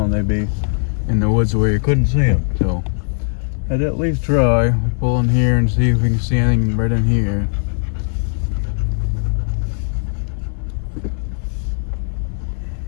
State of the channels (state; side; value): silent; right; 64 dB below the other